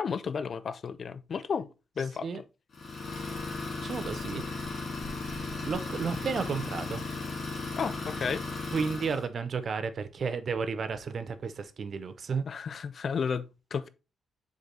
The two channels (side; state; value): both; normal; correlation 0.79